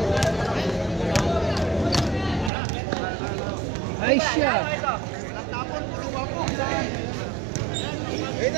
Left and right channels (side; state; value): left; drops out; at 2.5 s